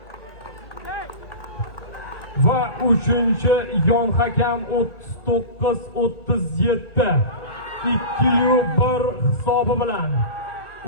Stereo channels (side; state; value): right; late; 1.3 ms